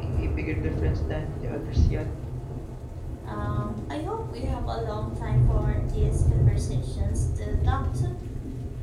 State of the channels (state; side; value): identical; both; correlation 1.00